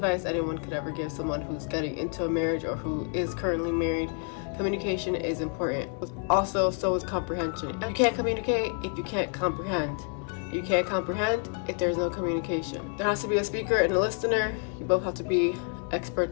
anyone could ever give someone who's getting into a marriage or who is currently married. Communication is important. Also, so is comprehension. You can't communicate if you can't comprehend. You can't comprehend if there's no communication. There has to be a speaker and a listener. You both have to be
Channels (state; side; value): quieter; right; 39.5 dB